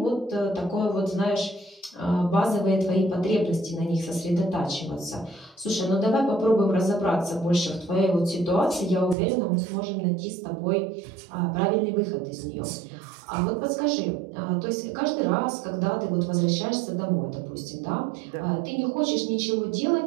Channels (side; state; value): left; drops out; at 9.2 s